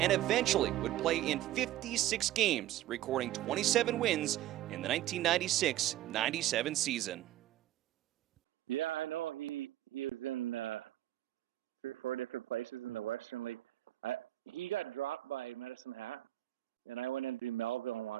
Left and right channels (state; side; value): quieter; left; 14.1 dB